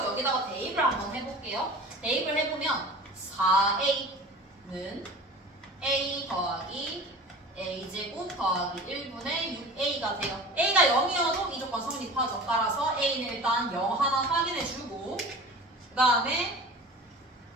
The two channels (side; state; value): both; normal; correlation 0.38